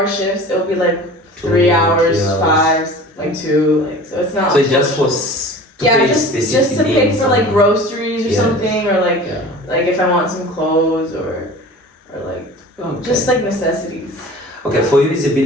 shifts. It'll be like 3 hours, 5, like 2, like so it's not. So it's just for pay just specific to pay needs for like groceries or Yes. something, or like like if I want some clothes or like just like necessities. Okay, for you it's a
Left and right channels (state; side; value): normal; both; correlation 0.40